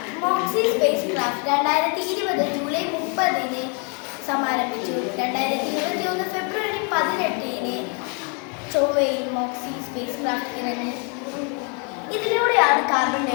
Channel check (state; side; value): quieter; right; 36.4 dB